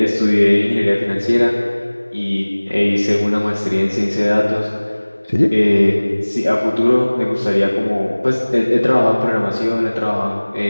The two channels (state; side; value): inverted; both; correlation -1.00